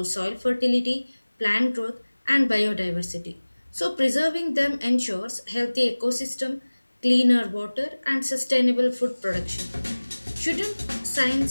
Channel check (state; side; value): inverted; both; correlation -1.00